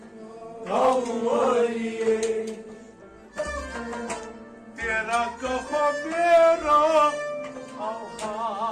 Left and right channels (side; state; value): both; identical; correlation 1.00